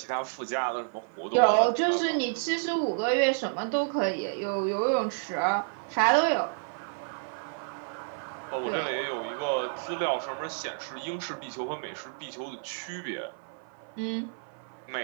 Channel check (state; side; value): silent; left; 58 dB below the other